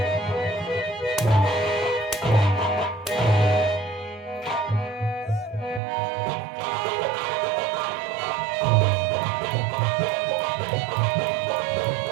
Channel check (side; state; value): left; drops out; at 5.8 s